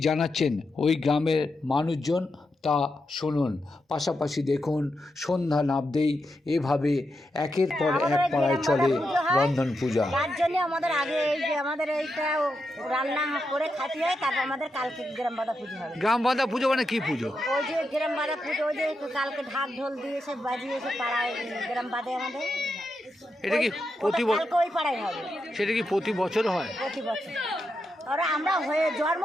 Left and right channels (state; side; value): normal; both; correlation 0.85